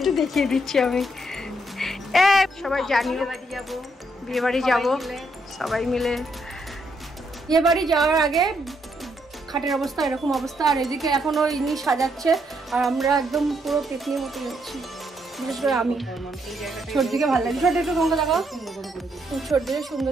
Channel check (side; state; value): both; normal; correlation 0.75